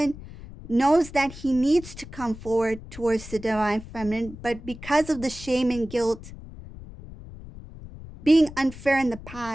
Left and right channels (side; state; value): left; noise; rumble, 15 dB below the sound